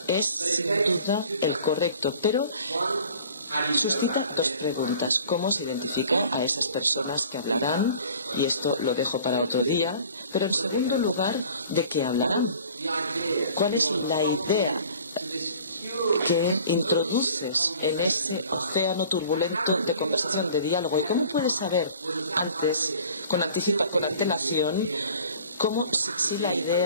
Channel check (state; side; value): inverted; both; correlation -0.48